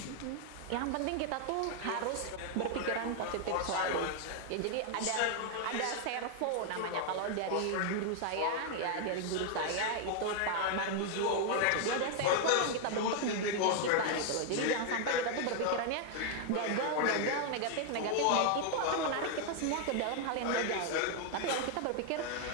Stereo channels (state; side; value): different; both; correlation 0.00